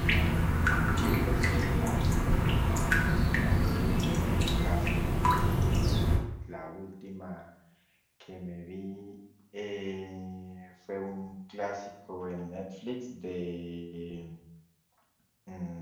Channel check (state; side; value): identical; both; correlation 1.00